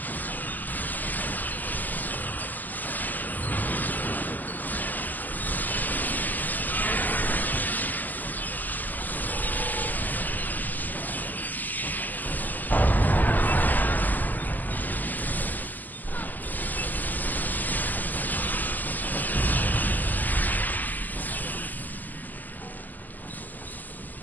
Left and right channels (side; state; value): right; late; 0.084 ms